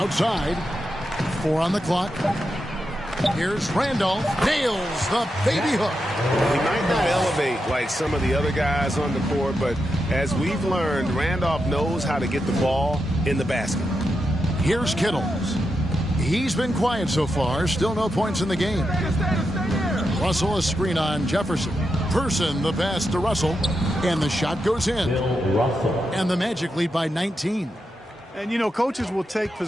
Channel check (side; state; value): both; normal; correlation 0.86